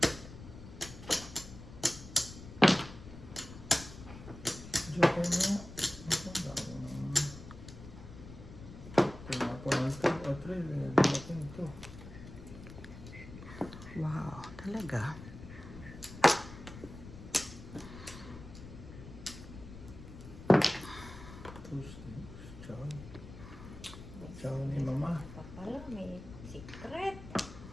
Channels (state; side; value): noise; left; rumble, 14 dB below the sound